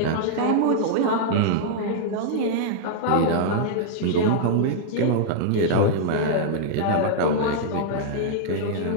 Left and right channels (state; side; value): different; both; correlation -0.01